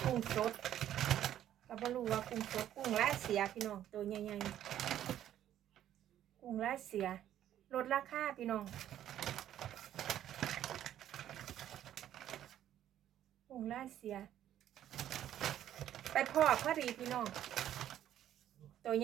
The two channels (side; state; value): left; quieter; 11.5 dB